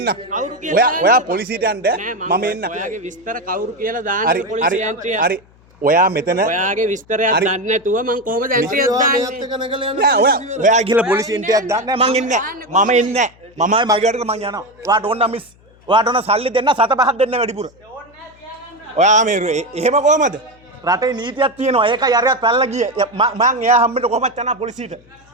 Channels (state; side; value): noise; left; hum, 29 dB below the sound